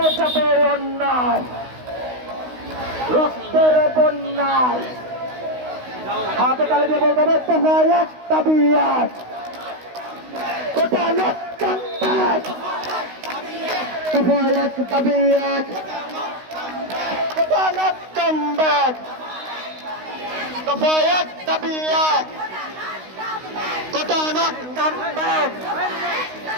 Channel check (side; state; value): left; late; 16 ms